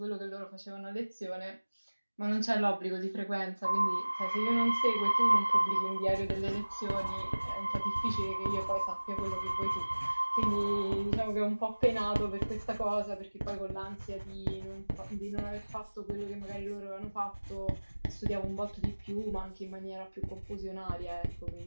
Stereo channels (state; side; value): inverted; both; correlation -1.00